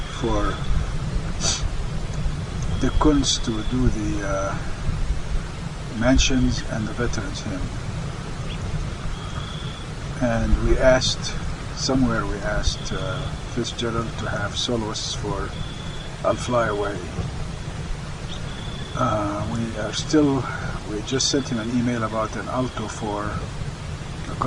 for the Kunst to do the mentions and the Veterans Hymn. And we asked Fitzgerald to have soloists for I'll Fly Away. We just sent him an email about an alto for, a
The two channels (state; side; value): identical; both; correlation 1.00